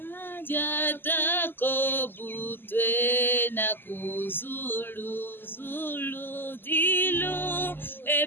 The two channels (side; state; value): right; late; 0.096 ms